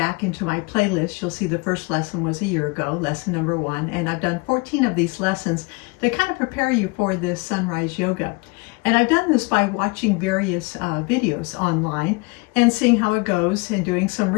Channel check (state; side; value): quieter; right; 28.3 dB